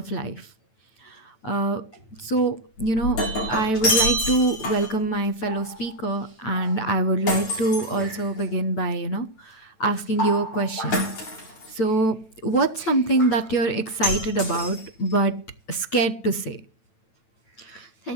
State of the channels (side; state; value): right; late; 9.1 ms